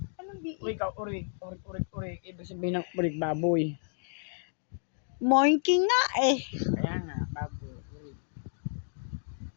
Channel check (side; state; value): right; silent; digital silence